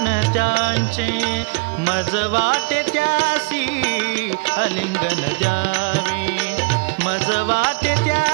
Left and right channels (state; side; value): quieter; left; 27.7 dB